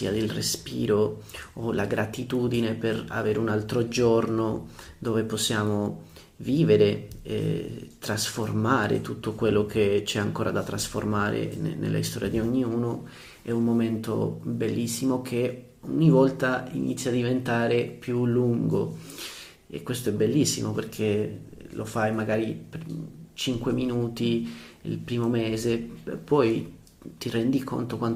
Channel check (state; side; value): identical; both; correlation 1.00